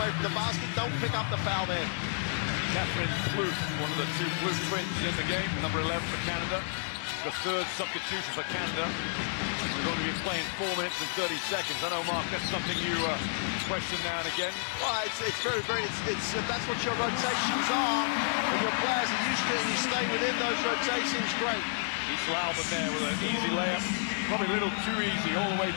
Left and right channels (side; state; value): right; silent; digital silence